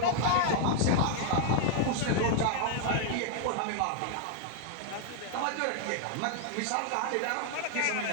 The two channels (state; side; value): different; both; correlation 0.00